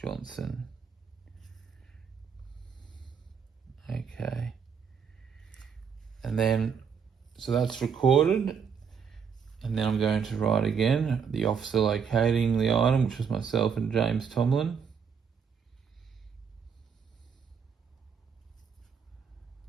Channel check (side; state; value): left; quieter; 6.6 dB